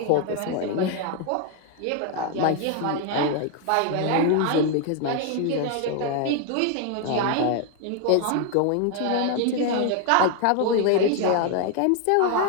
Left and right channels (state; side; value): different; both; correlation 0.00